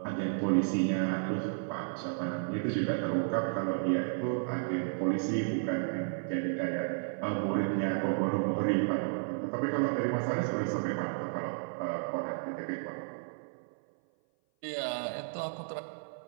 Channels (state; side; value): silent; left; 56 dB below the other